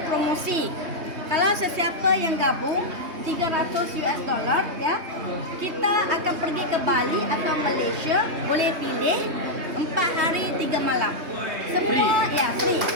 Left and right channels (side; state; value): left; late; 3.2 ms